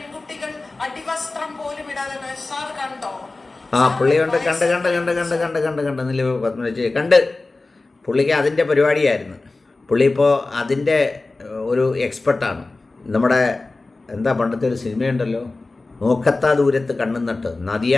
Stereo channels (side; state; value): right; quieter; 3.4 dB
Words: അടിവസ്ത്രം പോലും ഇടാതെ. സാർ കണ്ടോ? പുള്ളിയുണ്ട്, കണ്ട് പുള്ളിക്ക് അതിൻ്റെ പരിപാടിയായിരുന്നു. പുള്ളി ഇപ്പോൾ അതിൻ്റെ ഒരു എക്സ്പെർട്ടാണ്. നമ്മുടെ എന്താ പണ്ടത്തെ ഒരു സിനിമയുണ്ടല്ലോ, നോക്കത്താ ദൂരത്ത് കണ്ണും നട്ട്, നദിയ